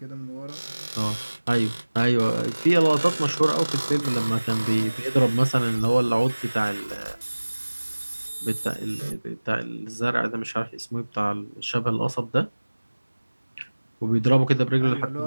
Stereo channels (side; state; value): both; inverted; correlation -1.00